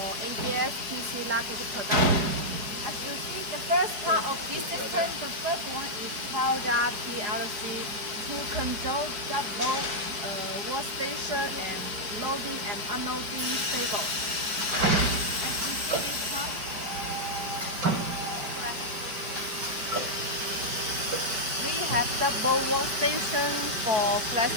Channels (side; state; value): left; late; 5.0 ms